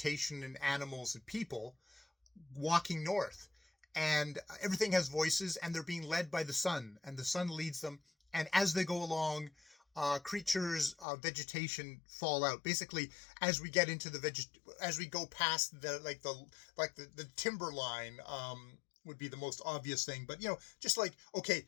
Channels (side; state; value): right; drops out; at 11.1 s